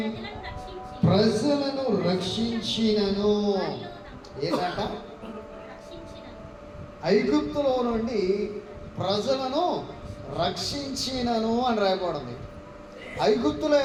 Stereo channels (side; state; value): both; identical; correlation 1.00